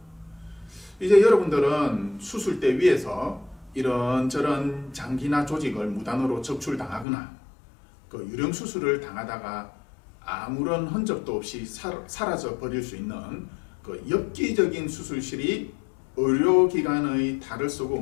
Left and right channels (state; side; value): drops out; right; at 7.1 s